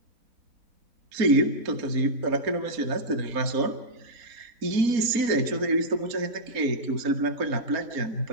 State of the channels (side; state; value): left; late; 4.3 ms